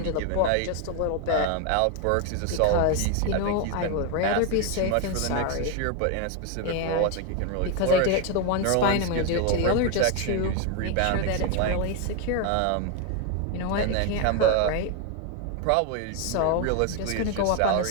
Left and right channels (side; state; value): both; different; correlation 0.01